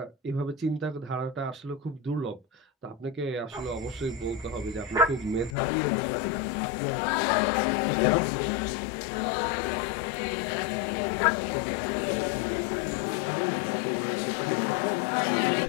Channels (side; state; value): right; drops out; at 5.6 s